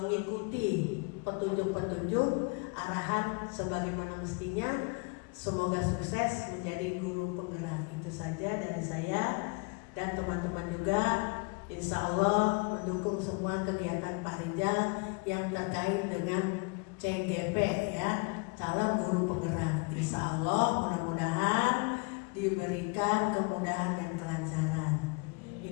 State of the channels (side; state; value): right; quieter; 32.5 dB